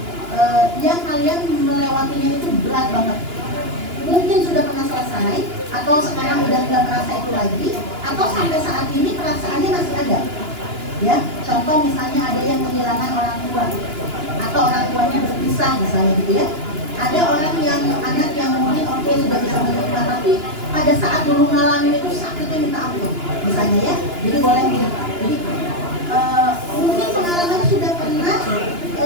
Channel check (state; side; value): late; left; 2.9 ms